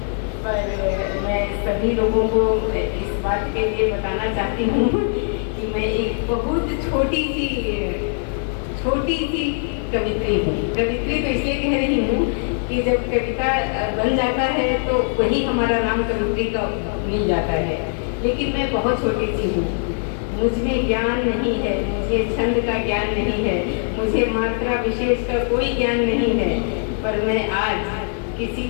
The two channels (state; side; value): silent; right; 57 dB below the other